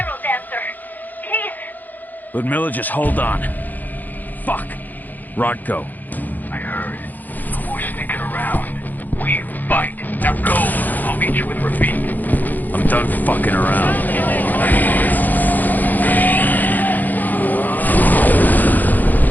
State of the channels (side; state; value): right; late; 0.084 ms